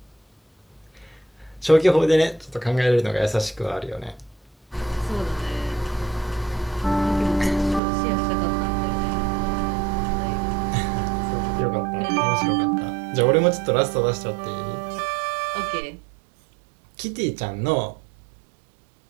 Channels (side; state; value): left; drops out; at 7.8 s